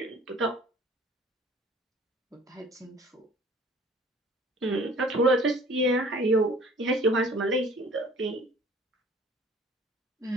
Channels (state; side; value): normal; both; correlation 0.51